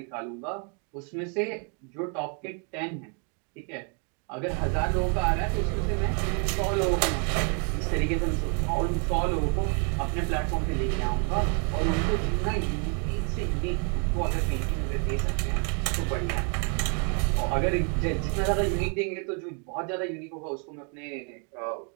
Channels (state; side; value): quieter; left; 38.4 dB